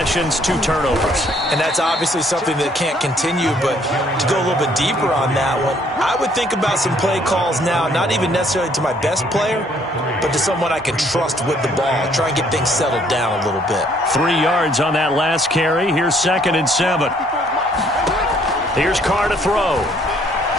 2 turnovers. And that's obviously something that can't continue, but to go a little bit deeper on that one, I would think about some play calls now, not even necessarily to my best player, but to someone I can trust with the ball. Try and get things settled down a little bit. 3 yards on that last carry. Here's 2nd and 7. Here's Carr to throw.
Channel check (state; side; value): normal; both; correlation 0.64